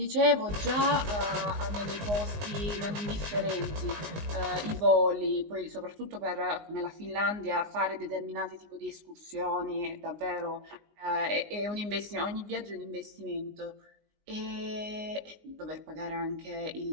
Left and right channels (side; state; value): left; late; 19 ms